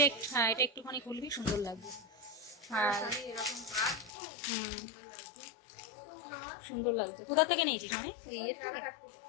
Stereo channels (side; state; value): right; drops out; at 4.1 s